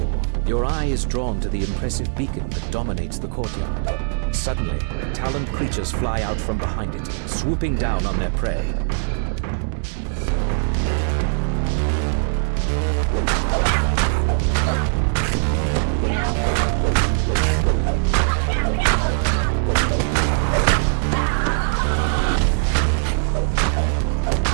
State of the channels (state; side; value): silent; left; 65 dB below the other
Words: Your eye is drawn to the impressive beacon that dominates the courtyard. Suddenly, taloned creatures fly out from behind it, swooping down on their prey.